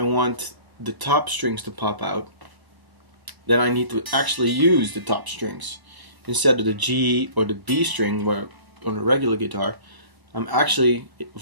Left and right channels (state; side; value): late; left; 1.0 ms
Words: want the top strings to pop out, then I need to actually use the top strings instead of the G or the B string, where on a regular guitar I'm actually